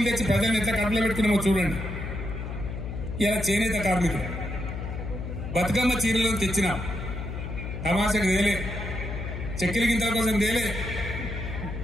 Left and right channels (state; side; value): noise; left; hum, 6 dB below the sound